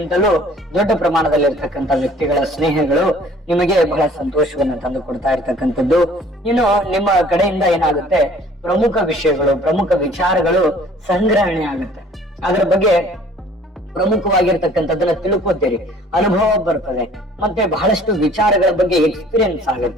ದೊಡ್ಡ ಪ್ರಮಾಣದಲ್ಲಿ ಇರ್ತಕ್ಕಂಥ ವ್ಯಕ್ತಿಗಳ ಸ್ನೇಹಗಳು ನಿಮಗೆ ಬಹಳ ಸಂತೋಷವನ್ನು ತಂದು ಕೊಡ್ತಾ ಇರ್ತಕ್ಕಂಥದ್ದು. ಇನ್ನು ನಿಮ್ಮ ಕಡೆಯಿಂದ ಏನಾಗುತ್ತೆ, ಪ್ರಮುಖ ವಿಷಯಗಳು, ಪ್ರಮುಖ ವಿಚಾರಗಳು ಸಂಗ್ರಹಣೆ ಆಗುತ್ತೆ. ಅದರ ಬಗ್ಗೆ ಪ್ರಮುಖವಾಗಿರ್ತಕ್ಕಂಥದ್ದನ್ನ ತಿಳ್ಕೊತೀರಿ, ಅನುಭವ ಬರ್ತದೆ, ಮತ್ತೆ ಬಹಳಷ್ಟು ವಿಚಾರಗಳ ಬಗ್ಗೆ ಎಕ್ಸ್ಪೀರಿಯನ್ಸ್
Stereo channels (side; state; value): both; normal; correlation 0.53